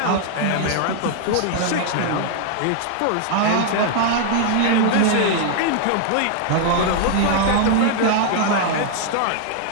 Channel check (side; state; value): both; different; correlation -0.01